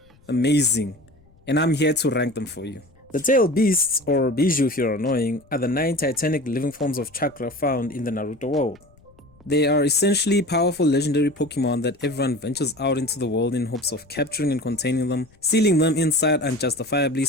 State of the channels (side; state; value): left; noise; rumble, 30 dB below the sound